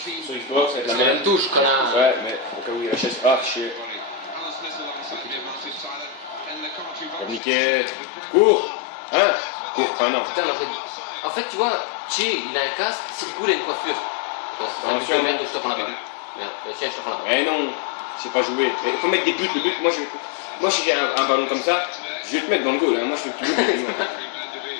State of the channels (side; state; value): right; drops out; at 7.4 s